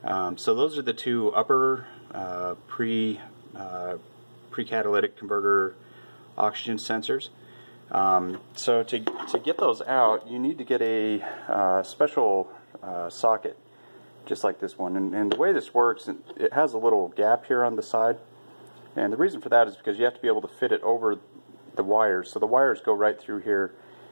So those are the 2 upper pre-catalytic converter oxygen sensors. So to get those out, you need to get a special socket, just like this one. And the way this works, it has a little gap here on the side. And the reason for that is because you have to be able to fit it over the wires. So the wires go right through here.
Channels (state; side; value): inverted; both; correlation -1.00